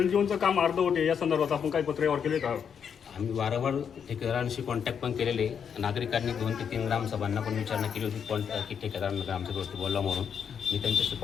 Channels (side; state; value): right; quieter; 7.4 dB